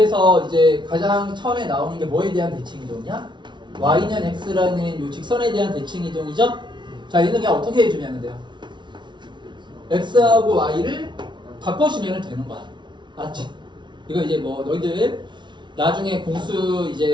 이제 가장 처음에 나오는 게 뭐에 대한 대칭 이동이야? y는 x라는 이 직선에 대한 대칭 이동이죠. 자, 얘는 그냥 어떻게 해주면 돼요? x하고 y를 바꿔주면 되는 거야. 알았지? 이거 이제 뭐 너희들 나중에 공수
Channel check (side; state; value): left; late; 0.23 ms